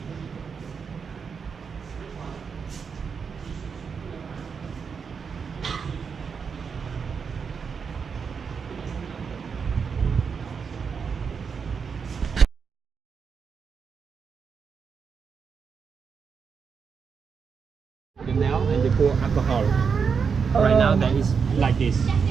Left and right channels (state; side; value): quieter; left; 6.0 dB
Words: The nail and they pour alcohol. Right now that is like this.